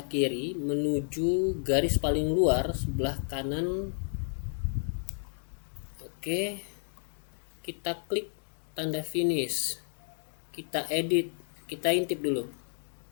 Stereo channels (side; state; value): right; silent; digital silence